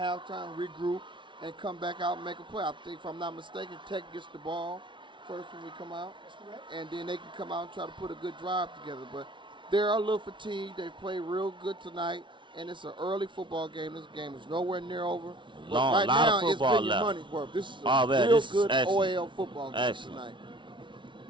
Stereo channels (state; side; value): late; left; 0.24 ms